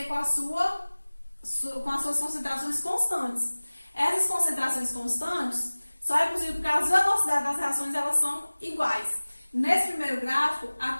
com as suas concentrações constantes. Essas concentrações constantes só é possível porque as velocidades das reações elas são iguais. Nesse primeiro gráfico, a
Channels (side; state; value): both; inverted; correlation -1.00